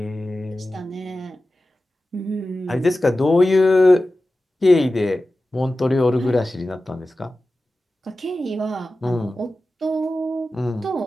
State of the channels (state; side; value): normal; both; correlation 0.95